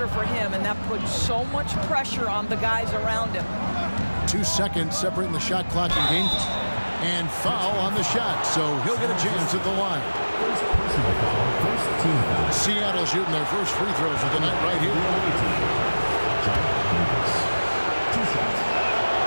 for him, and that puts so much pressure on the guys around him. 2 seconds separating the shot clock and game clock. And foul on the shot, so he'll get a chance at the line. Seattle shooting their first free throws of the night right here.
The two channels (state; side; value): inverted; both; correlation -1.00